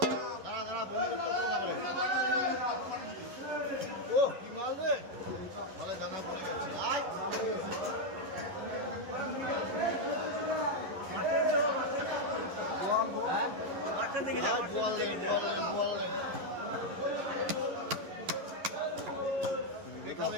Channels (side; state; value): left; late; 11 ms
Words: ও কি মাল রে ভালো জানা পড়ে গেছে মাঠের দিকে যাও